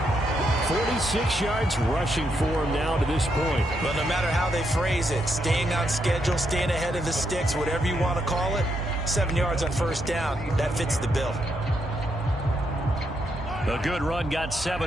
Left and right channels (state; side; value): normal; both; correlation 0.79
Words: 46 yards rushing for him now to this point. But no matter how they phrase it, staying on schedule, staying ahead of the sticks, whatever you want to call it, 7 yards on first down, that fits the bill. A good run got